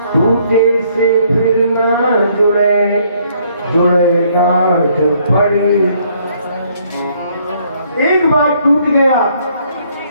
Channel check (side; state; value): both; inverted; correlation -0.66